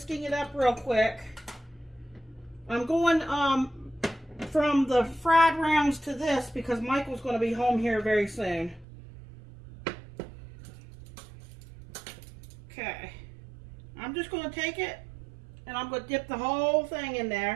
it up real quick. I'm going from the fried rounds to this because Michael's going to be home here very soon. Okay, I'm just going to take it and I'm going to dip the whole thing in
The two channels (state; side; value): drops out; left; at 8.8 s